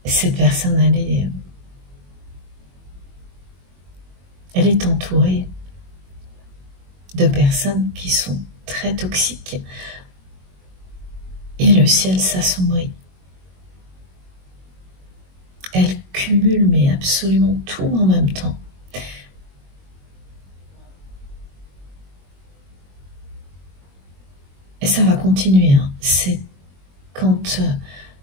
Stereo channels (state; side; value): late; left; 22 ms